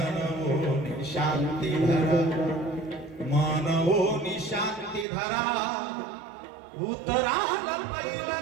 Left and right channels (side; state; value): left; drops out; at 5.1 s